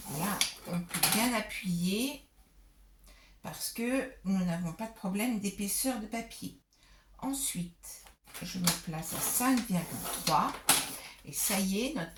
Là, on peut bien appuyer parce que nous n'avons pas de problème d'épaisseur de papier. Ensuite, je me place à 5,3 et ça y est, notre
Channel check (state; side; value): identical; both; correlation 1.00